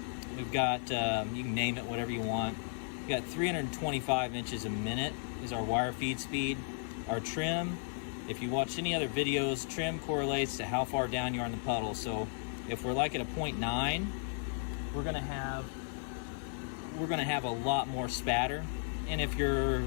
we've got, you can name it whatever you want. We've got 325 inches a minute is our wire feed speed. Our trim, if you watch any other videos, trim correlates to how far down you are in the puddle. So if we're like at a 0.9, we're going to have a lot more spatter. And if you're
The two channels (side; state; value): right; silent; 55 dB below the other